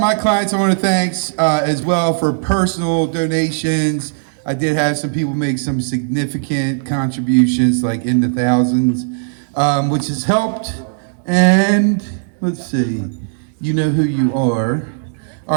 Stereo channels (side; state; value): left; silent; digital silence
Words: clients I want to thank as well for personal donations. I did have some people make some significant contributions, like in the thousands, which has helped. And let's see, you know who you are.